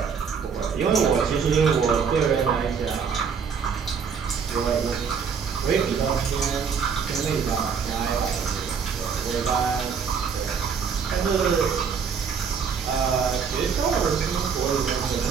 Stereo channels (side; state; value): left; quieter; 6.3 dB